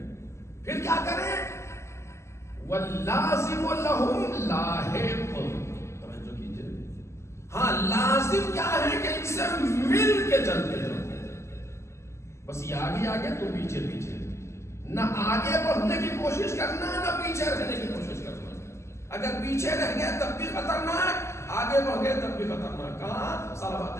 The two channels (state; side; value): late; right; 0.13 ms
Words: پھر کیا کریں؟ واللازم لہم لاحق، توجہ کیجئے، ہاں لازم کیا ہے کہ ان سے مل کے چلتے ہیں، بس یہ آگے آگے تو پیچھے پیچھے، نہ آگے بڑھنے کی کوشش کرنا نہ پیچھے رہنے کی کوشش کرنا۔ اگر پیچھے رہ گئے تب بھی خطرناک، آگے بڑھ گئے تب بھی خطرناک۔ کہاں؟